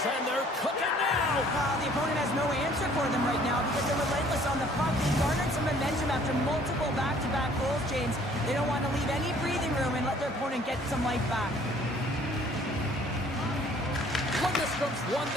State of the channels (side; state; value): both; normal; correlation 0.57